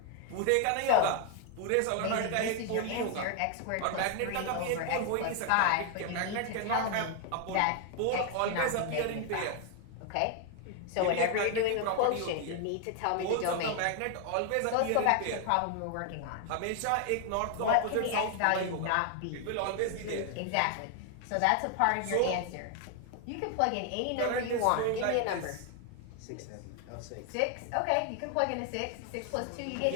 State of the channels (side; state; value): both; different; correlation 0.00